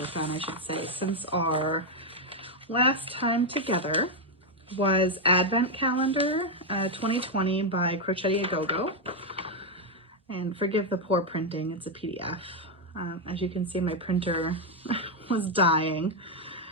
on, I should say, since our last time together, was Advent Calendar 2020 by Crochetti A Go-Go. And forgive the poor printing, it's a PDF. As you can see, my printer was dying.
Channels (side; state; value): both; normal; correlation 0.01